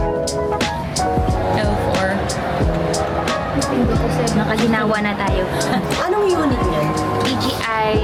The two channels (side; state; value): both; identical; correlation 1.00